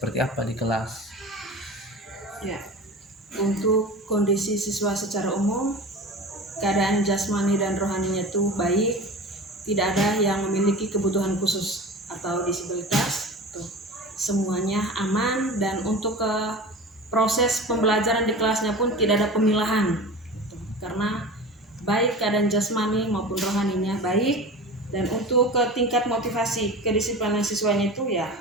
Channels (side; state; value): both; normal; correlation 0.33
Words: apa di kelas? Ya, untuk kondisi siswa secara umum, keadaan jasmani dan rohaninya itu baik, tidak ada yang memiliki kebutuhan khusus atau disabilitas. Semuanya aman, dan untuk proses pembelajaran di kelasnya pun tidak ada pemilahan. Karena baik keadaan jasmani maupun rohaninya baik. Dan untuk tingkat motivasi kedisiplinan siswanya itu ya